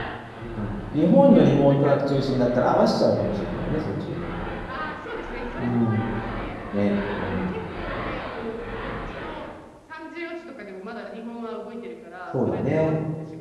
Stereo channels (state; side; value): identical; both; correlation 1.00